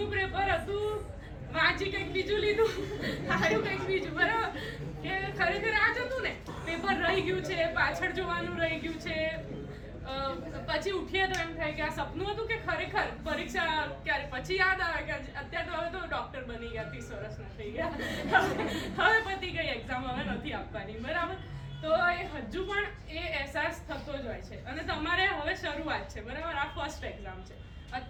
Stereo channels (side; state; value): both; identical; correlation 1.00